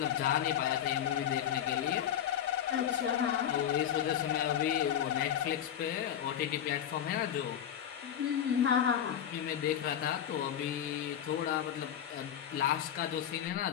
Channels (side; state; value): right; quieter; 9.8 dB